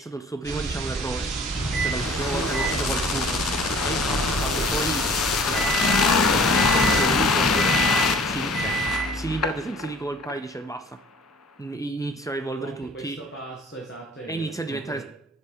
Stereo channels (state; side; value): normal; both; correlation 0.49